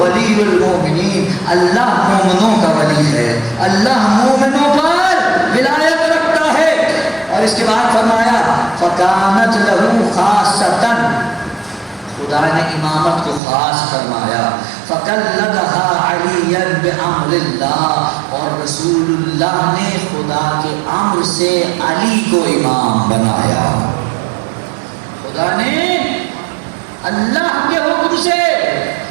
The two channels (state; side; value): drops out; left; at 13.4 s